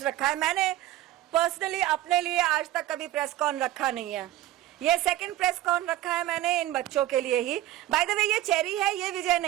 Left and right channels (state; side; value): quieter; left; 14.6 dB